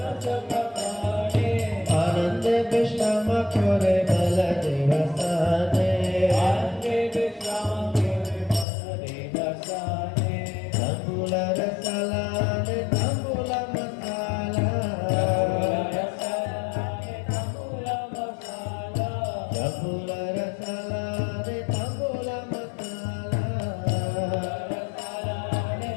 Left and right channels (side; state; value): right; drops out; at 8.7 s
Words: आनंद विश्राम खोरे बल देवसाने तंबूल रसाला ने तंबूल मसाला तंबूल रसाला ने तंबूल मसाला